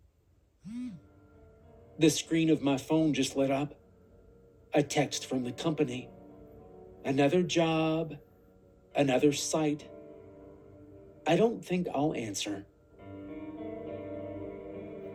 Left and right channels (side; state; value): both; identical; correlation 1.00